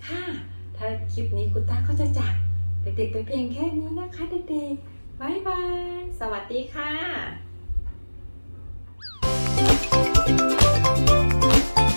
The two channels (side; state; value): both; inverted; correlation -1.00